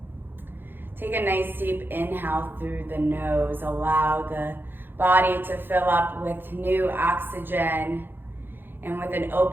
Take a nice deep inhale through the nose. Allow the body to fill up with new oxygen, and with an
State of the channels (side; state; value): left; late; 0.099 ms